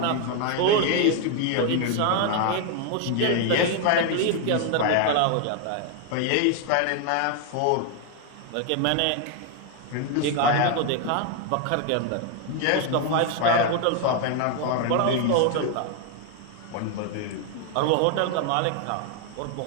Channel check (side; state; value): both; different; correlation 0.01